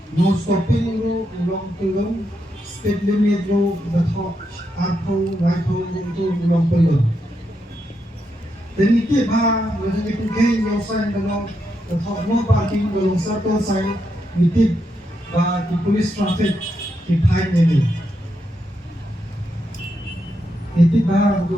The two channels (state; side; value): normal; both; correlation 0.82